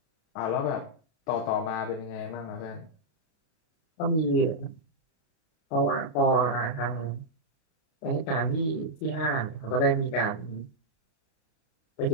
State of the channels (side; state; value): right; late; 31 ms